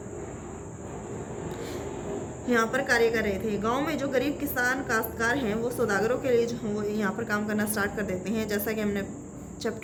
यहाँ पर कार्य कर रहे थे। गांव में जो गरीब किसान काश्तकार हैं वो सौदागरों के लिए जो वो यहाँ पर काम करना स्टार्ट कर देते हैं। जैसा कि हमने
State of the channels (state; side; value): identical; both; correlation 1.00